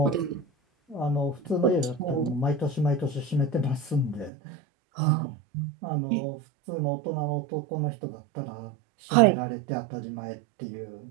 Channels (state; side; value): drops out; left; at 4.3 s